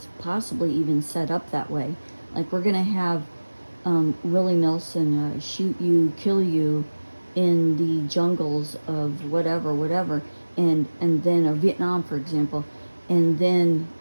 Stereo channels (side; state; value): both; inverted; correlation -1.00